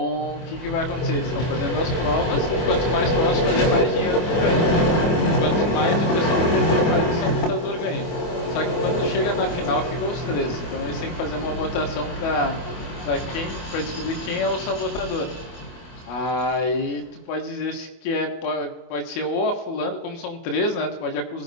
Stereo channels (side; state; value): right; late; 24 ms